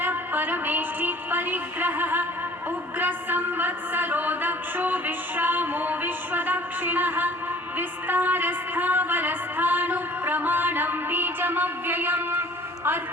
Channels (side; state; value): both; normal; correlation 0.51